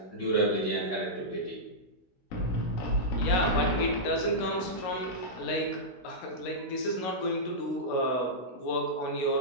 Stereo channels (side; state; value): right; late; 16 ms